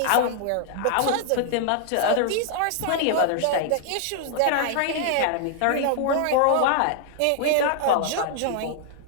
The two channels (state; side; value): different; both; correlation -0.01